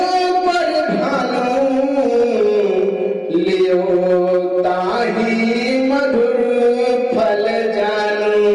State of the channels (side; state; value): both; identical; correlation 1.00